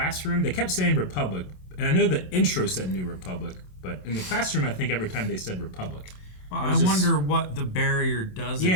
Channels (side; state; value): right; late; 27 ms